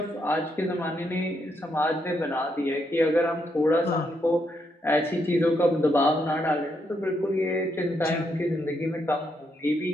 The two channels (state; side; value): normal; both; correlation 0.78